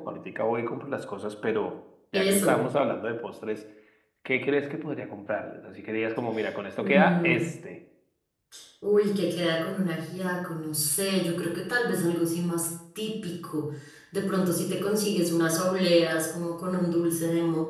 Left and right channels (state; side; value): identical; both; correlation 1.00